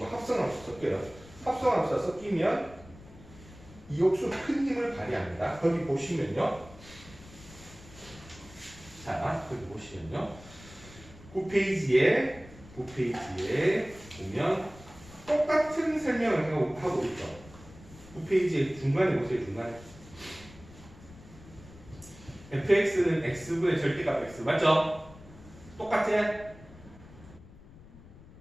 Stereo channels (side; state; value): left; noise; rumble, 20 dB below the sound